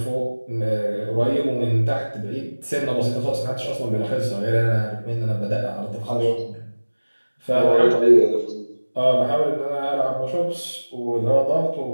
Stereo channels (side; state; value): both; inverted; correlation -1.00